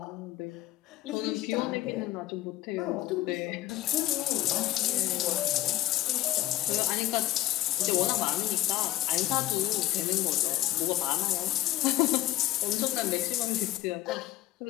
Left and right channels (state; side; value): quieter; right; 15.2 dB